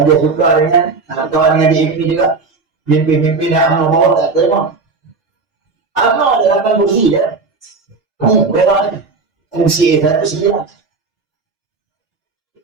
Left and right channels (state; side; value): quieter; left; 4.2 dB